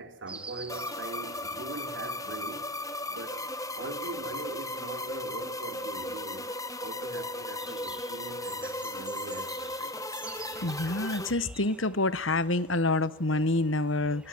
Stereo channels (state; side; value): normal; both; correlation 0.27